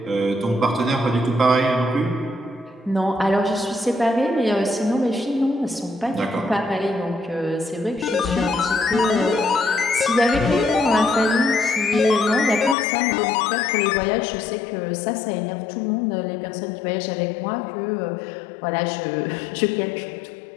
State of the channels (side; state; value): right; drops out; at 12.8 s